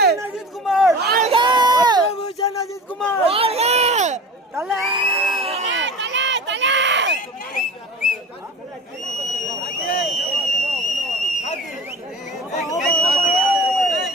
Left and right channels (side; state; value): both; normal; correlation 0.37